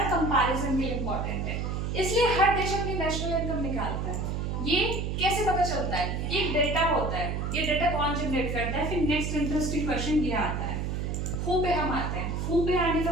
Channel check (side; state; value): right; noise; hum, 2 dB below the sound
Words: कंपैरिजन भी इंपॉर्टेंट है। इसलिए हर देश अपनी नेशनल इनकम निकालता है। ये कैसे पता चलता है? ये एक डेटा होता है। ये डेटा कौन जनरेट करता है? फिर नेक्स्ट इंटरेस्टिंग क्वेश्चन ये आता है, हु पे हम आते हैं। हु पे आने का